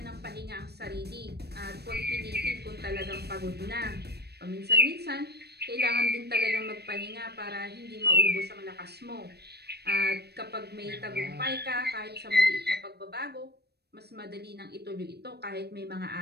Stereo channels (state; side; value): late; left; 0.47 ms